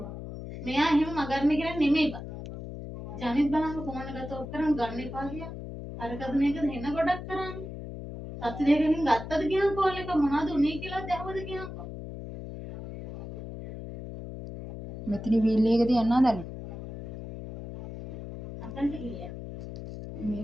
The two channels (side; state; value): left; noise; hum, 10 dB below the sound